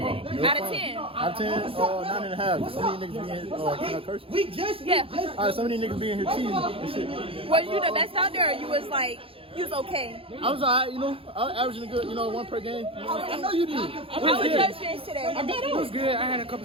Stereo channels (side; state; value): left; late; 0.27 ms